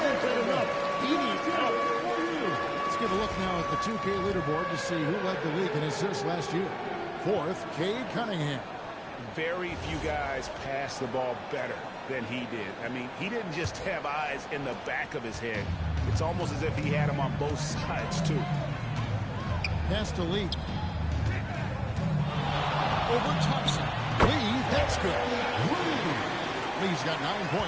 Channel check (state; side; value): identical; both; correlation 1.00